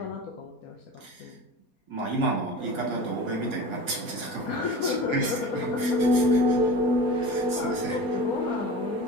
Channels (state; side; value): late; right; 4.2 ms